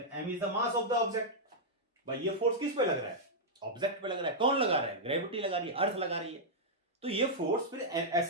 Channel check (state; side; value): normal; both; correlation -0.07